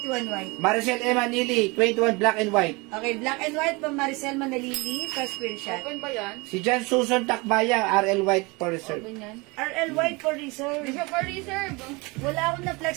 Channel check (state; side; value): quieter; left; 26.0 dB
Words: white. Maricel Emma Nili, 21 black and white. Okay, black and white, Ma'am Maricel Manalili, first screenshot. Open ba yan? Si Jan Susan Takbaya, RL white for reserve. Open yan. RL white for reserve. Hindi siya for reserve. Wala akong